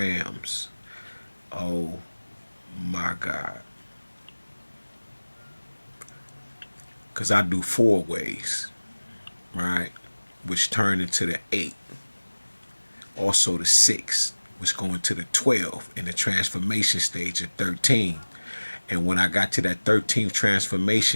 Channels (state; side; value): inverted; both; correlation -1.00